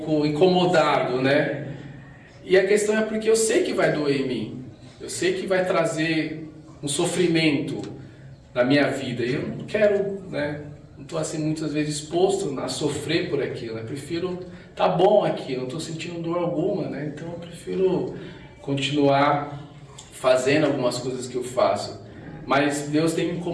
incomodado, né? E a questão é porque eu sei que vai doer em mim. Eu sei que vai trazer um sofrimento na minha vida. E eu não quero, né? Não estou assim muitas vezes exposto a sofrer por aquilo. Eu prefiro tá bom aqui, não estou sentindo dor alguma, né? Então eu prefiro continuar fazendo algumas coisas que eu faço. Mas Deus tem me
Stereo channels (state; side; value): identical; both; correlation 1.00